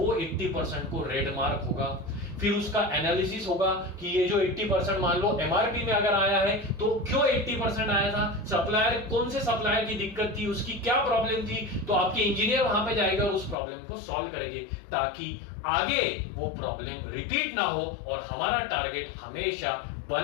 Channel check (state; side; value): drops out; right; at 13.6 s